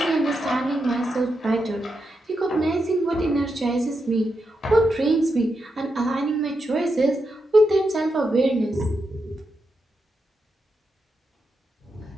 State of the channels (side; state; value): both; normal; correlation 0.85